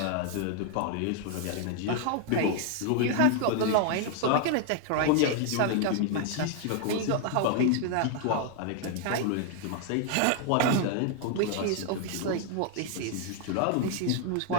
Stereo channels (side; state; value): both; different; correlation 0.00